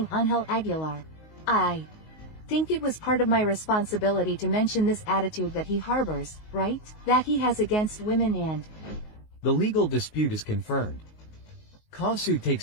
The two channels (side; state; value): right; late; 19 ms